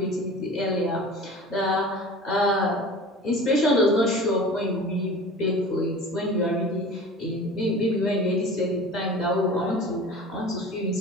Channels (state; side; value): normal; both; correlation 0.39